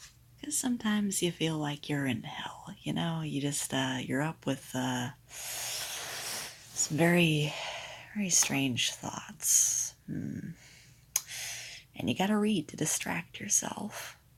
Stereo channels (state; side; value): identical; both; correlation 1.00